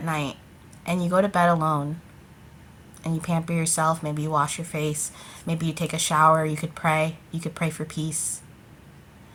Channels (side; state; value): both; identical; correlation 1.00